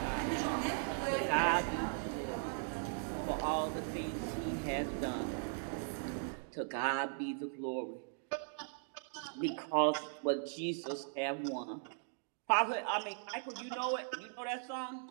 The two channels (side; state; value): left; silent; digital silence